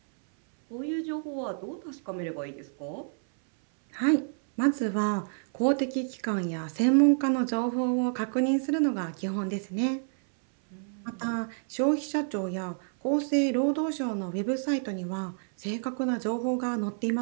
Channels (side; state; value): left; silent; 58 dB below the other